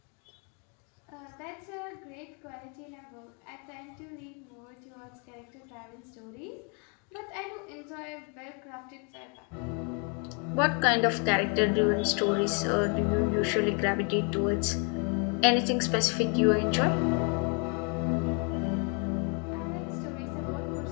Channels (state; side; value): quieter; right; 36.8 dB